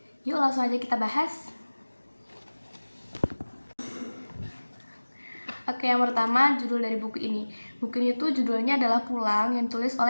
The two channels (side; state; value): both; inverted; correlation -1.00